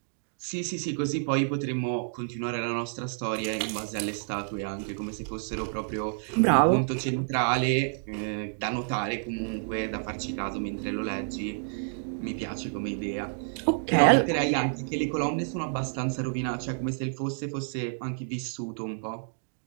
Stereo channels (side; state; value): left; silent; digital silence